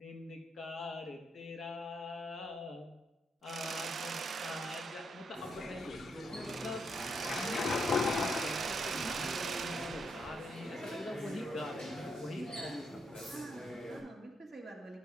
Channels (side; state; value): both; normal; correlation 0.78